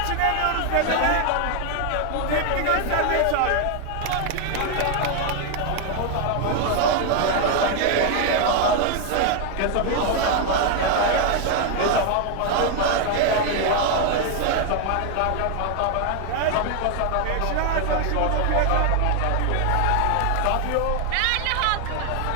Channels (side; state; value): both; different; correlation 0.00